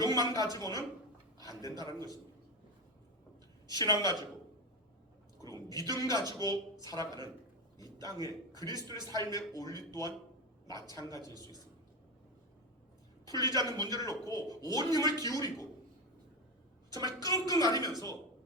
가지고는 안 된다는 것입니다. 신앙 가지고 그리고 믿음 가지고 살아가는 이 땅의 그리스도의 삶의 원리 또한 마찬가지일 수 있습니다. 풀리지 않는 문제를 놓고 온 힘을 기울이고 정말 끙끙 앓으면서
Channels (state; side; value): normal; both; correlation 0.16